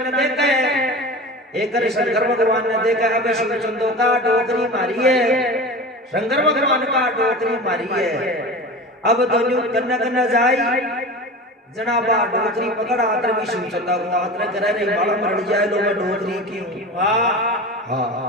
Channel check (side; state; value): both; normal; correlation 0.32